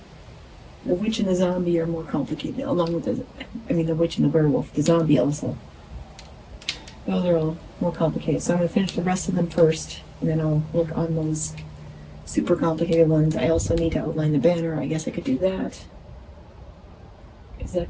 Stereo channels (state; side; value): identical; both; correlation 1.00